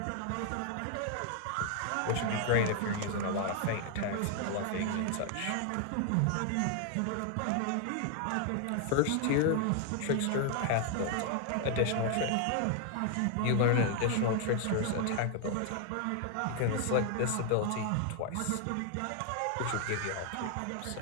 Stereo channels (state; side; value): different; both; correlation 0.00